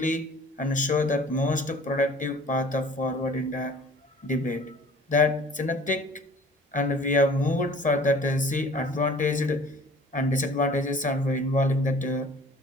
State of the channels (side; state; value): both; normal; correlation 0.49